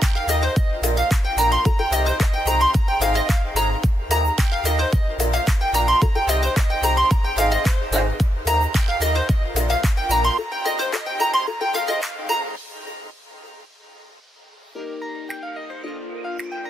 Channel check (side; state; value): both; normal; correlation 0.85